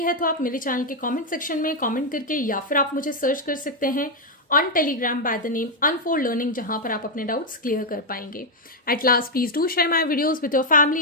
तो आप मेरे चैनल के कमेंट सेक्शन में कमेंट करके या फिर आप मुझे सर्च कर सकते हैं on Telegram by the name unfold learning, जहां पर आप अपने डाउट्स क्लियर कर पाएंगे। At last please do share my videos with your family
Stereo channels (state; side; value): normal; both; correlation 0.01